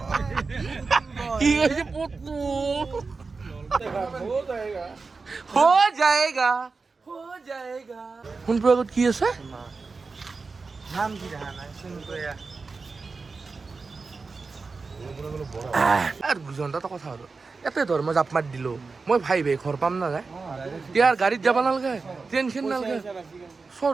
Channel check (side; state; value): left; quieter; 4.3 dB